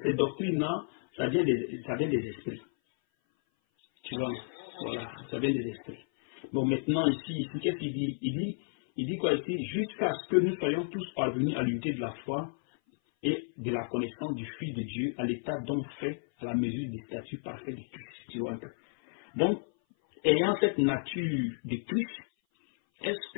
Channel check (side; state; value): right; silent; 56 dB below the other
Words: doctrines-là, ça vient des esprits. Tu vois, non? Voilà, ça vient des esprits. Bon, maintenant, ici qu'est-ce qu'il dit? Il dit quoi ici? Jusqu'à ce que nous soyons tous parvenus à l'unité de la foi et de la connaissance du Fils de Dieu, à l'état donc fait à la mesure du statut parfait de Christ. Tu vois un peu. Donc, ayant cette nature de Christ, est-ce